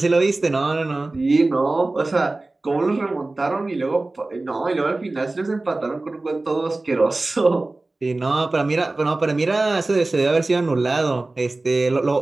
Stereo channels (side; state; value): left; quieter; 3.1 dB